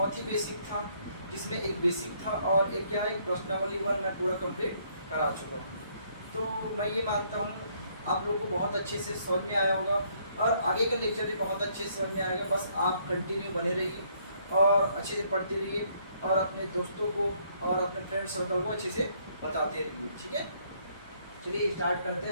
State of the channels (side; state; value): both; inverted; correlation -0.68